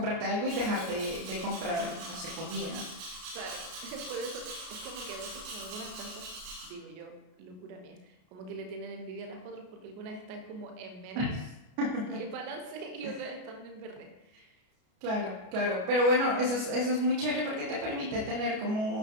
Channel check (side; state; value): left; late; 33 ms